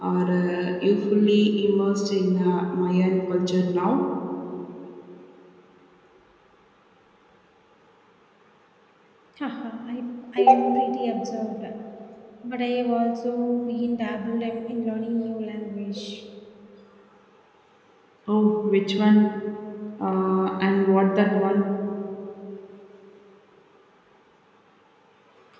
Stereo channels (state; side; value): identical; both; correlation 1.00